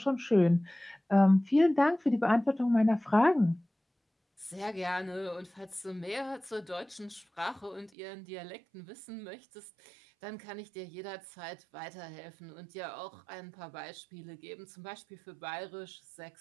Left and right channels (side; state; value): left; drops out; at 7.9 s